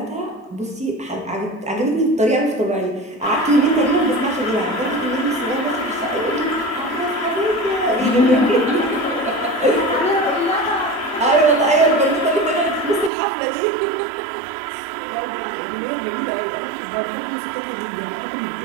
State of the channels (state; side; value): drops out; left; at 13.1 s